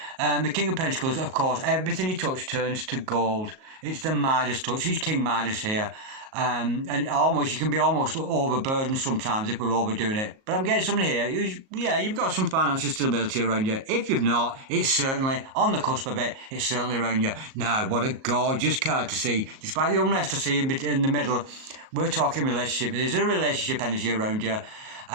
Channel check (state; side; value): late; left; 38 ms